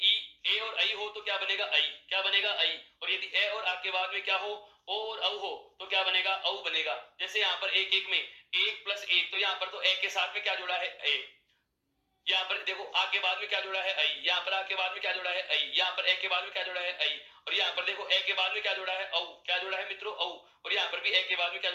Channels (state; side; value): identical; both; correlation 1.00